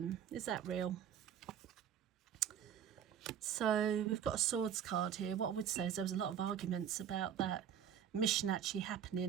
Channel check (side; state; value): left; quieter; 9.0 dB